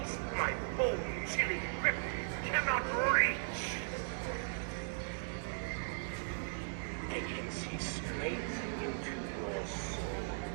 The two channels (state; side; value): silent; left; 53 dB below the other